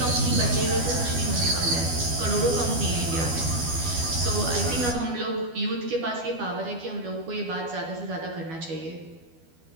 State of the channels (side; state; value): left; late; 12 ms